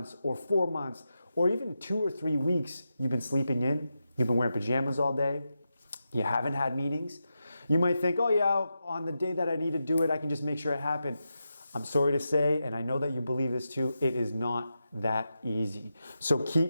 or 4 months or even 2 or 3 weeks you've been sleeping in, you've been wearing pajamas all day, you haven't had meetings, you might think, oh yeah, on the day that I need to do it, I can just make sure it happened. I'm sorry to say, and I know that you believe this too, it is not that easy. So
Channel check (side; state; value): both; inverted; correlation -0.89